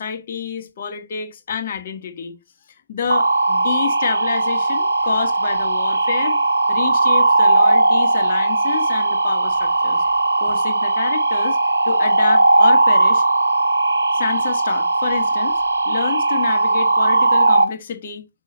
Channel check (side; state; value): both; inverted; correlation -0.89